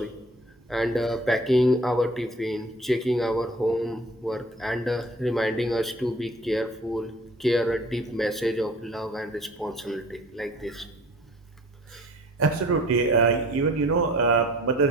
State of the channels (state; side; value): normal; both; correlation 0.48